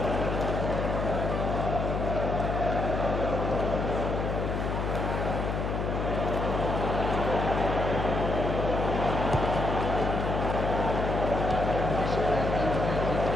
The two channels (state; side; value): noise; left; hum, 1 dB below the sound